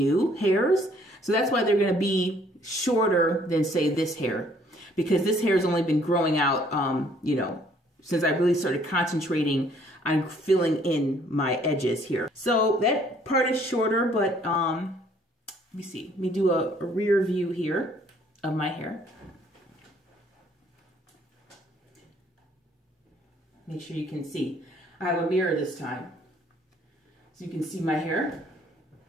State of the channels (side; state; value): both; normal; correlation 0.62